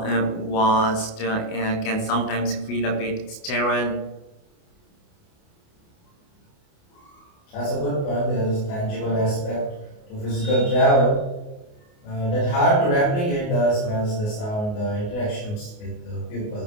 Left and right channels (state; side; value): late; right; 28 ms